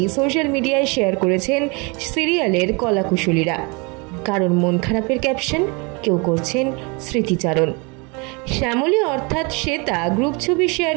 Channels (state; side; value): quieter; left; 29.9 dB